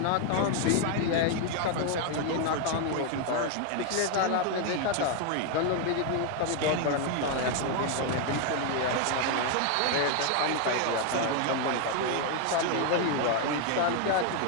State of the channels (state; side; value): different; both; correlation 0.01